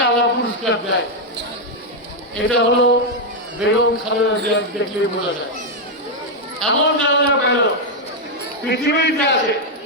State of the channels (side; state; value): both; normal; correlation 0.00